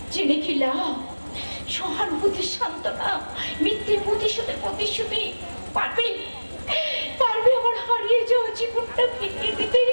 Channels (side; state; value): both; inverted; correlation -1.00